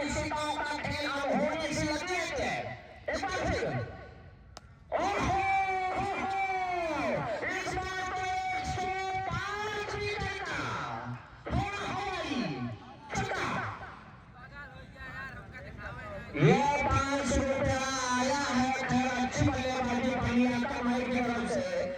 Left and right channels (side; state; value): both; identical; correlation 1.00